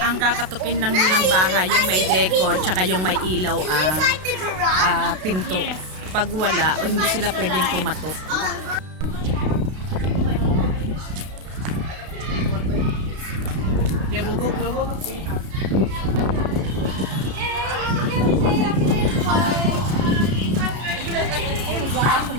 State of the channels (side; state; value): left; late; 32 ms